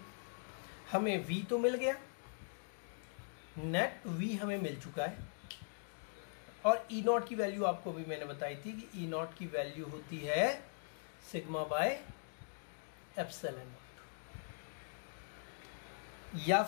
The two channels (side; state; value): right; silent; digital silence